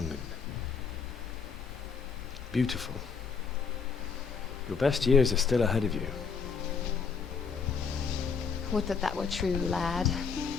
and beautiful. Your best years are still ahead of you. Would that that were true, lad.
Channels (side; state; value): right; quieter; 5.7 dB